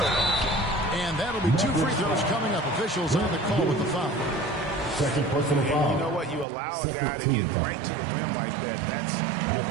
And that'll be 2 free throws coming up. Officials on the call with the foul. Second personal foul. You know what? You allow a guy to get right to the rim like that. That's your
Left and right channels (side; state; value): left; drops out; at 6.5 s